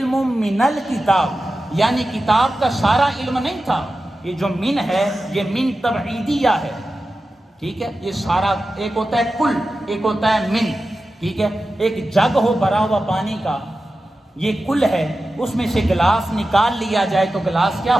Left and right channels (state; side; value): normal; both; correlation 0.93